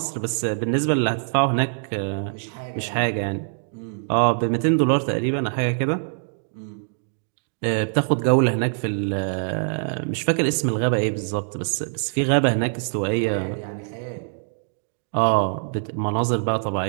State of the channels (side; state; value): left; silent; digital silence